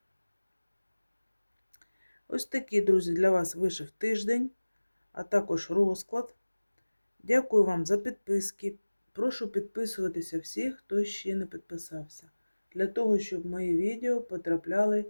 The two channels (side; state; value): both; inverted; correlation -1.00